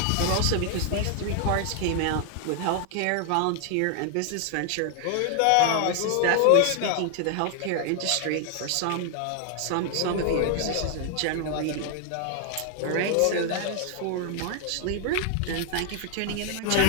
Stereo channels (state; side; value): different; both; correlation 0.00